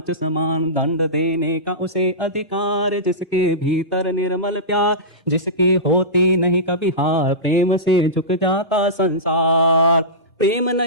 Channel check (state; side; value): normal; both; correlation -0.18